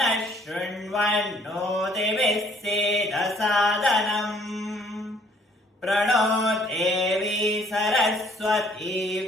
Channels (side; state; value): both; normal; correlation 0.61